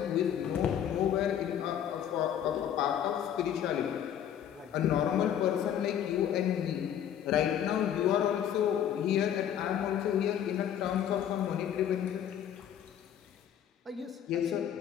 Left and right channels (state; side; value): quieter; right; 9.8 dB